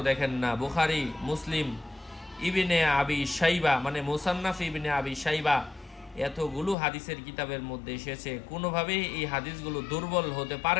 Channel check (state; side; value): drops out; right; at 6.8 s